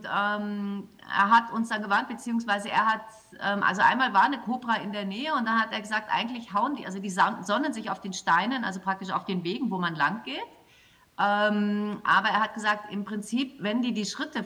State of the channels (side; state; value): both; identical; correlation 1.00